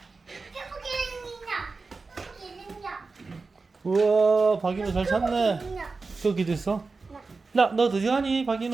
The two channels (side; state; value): left; quieter; 4.1 dB